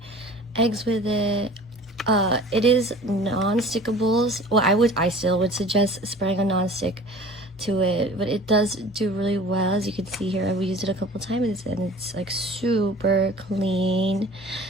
eggs with it. It is non-stickables. Well, I still would suggest spraying a non-stick to it, but it does do really well. As you can see here, I've used it a couple times and it's like super clean.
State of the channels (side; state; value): both; normal; correlation 0.44